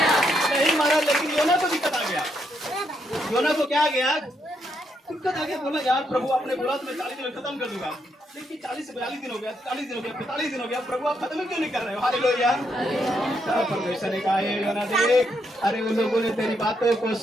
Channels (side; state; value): both; normal; correlation 0.78